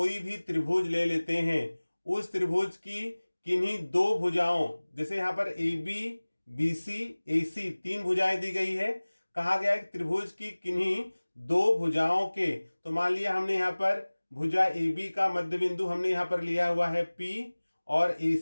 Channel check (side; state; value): both; inverted; correlation -1.00